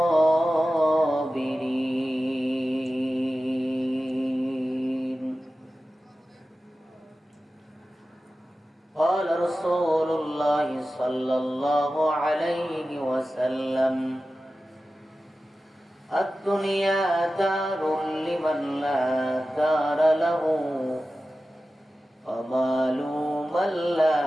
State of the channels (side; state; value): both; normal; correlation 0.94